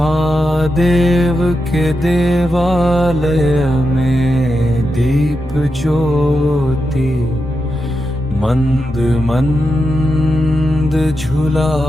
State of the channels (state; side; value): normal; both; correlation 0.88